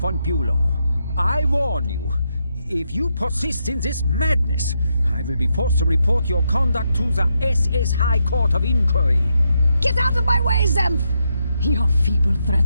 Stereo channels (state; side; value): inverted; both; correlation -0.81